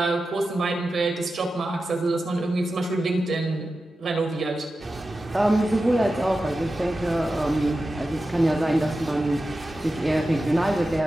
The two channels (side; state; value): both; normal; correlation 0.93